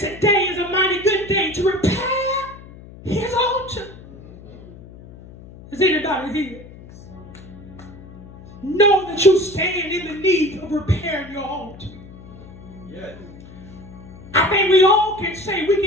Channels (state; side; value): noise; left; hum, 18 dB below the sound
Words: is a mighty good day to repair his altar. Is anybody here? Know that you stand in the need of repairing your altar. Yes. I think we all can say we